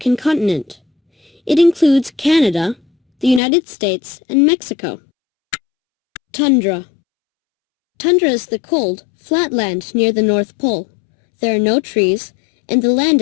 continent. It includes Canada, the United States, and Mexico. Tundra. Tundra is the cold, flat land near the North Pole. There are no trees, and the land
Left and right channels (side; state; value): right; drops out; at 3.4 s